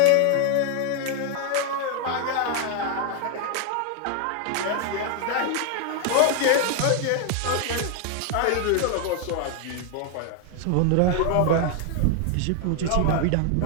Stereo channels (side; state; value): both; different; correlation 0.01